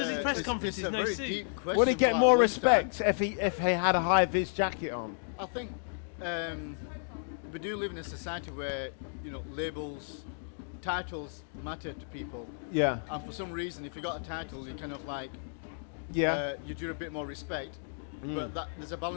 his press conferences, no suit. Would he get more respect if he had a high vis jacket on? I think we do live in a society where labels, titles matter to people. Yeah. And for some reason, if you got a title, you kind of you do a bit more respect. But there's a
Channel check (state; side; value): silent; right; digital silence